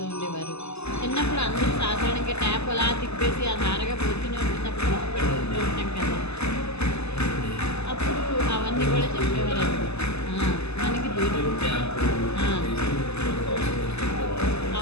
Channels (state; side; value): late; right; 0.80 ms